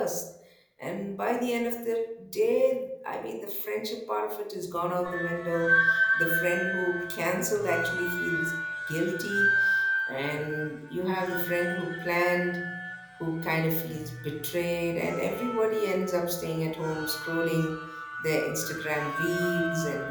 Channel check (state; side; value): identical; both; correlation 1.00